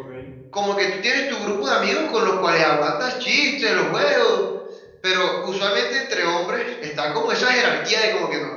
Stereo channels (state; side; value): identical; both; correlation 1.00